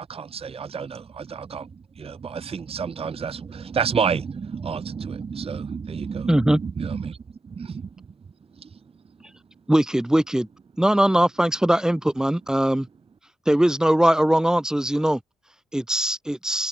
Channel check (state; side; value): normal; both; correlation 0.91